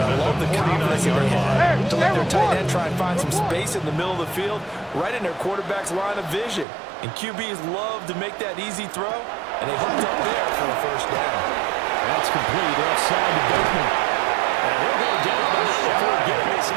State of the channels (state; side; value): drops out; left; at 6.7 s